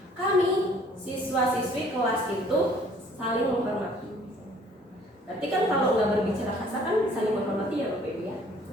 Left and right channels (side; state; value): both; normal; correlation 0.57